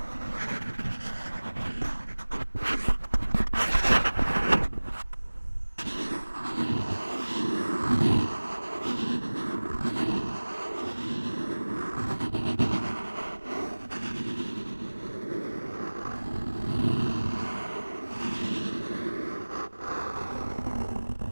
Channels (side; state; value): both; inverted; correlation -1.00